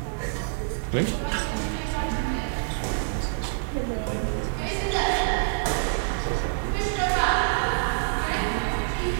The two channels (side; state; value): left; silent; 61 dB below the other